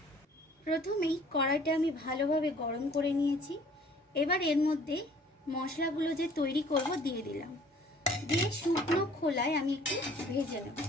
প্রথমেই কড়াইটা আমি ভালোভাবে গরম করে নিয়েছি। এবার এর মধ্যে মশলাগুলো যে তৈরি করব দিয়ে দিলাম, দিয়ে শুকনো খোলায় আমি একটু ভেজে নেব।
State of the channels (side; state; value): both; normal; correlation 0.54